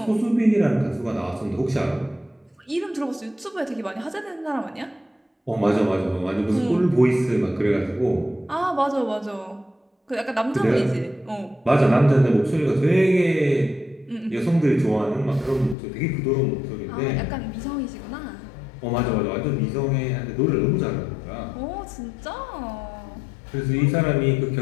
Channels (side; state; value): right; drops out; at 15.8 s